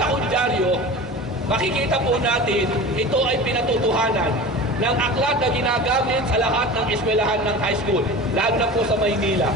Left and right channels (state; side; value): normal; both; correlation 0.34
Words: kong dyaryo, makikita po natin, ito ay pinatutuhanan ng aklat na ginagamit sa lahat ng eskwelahan ng high school, lalo na po sa Maynila,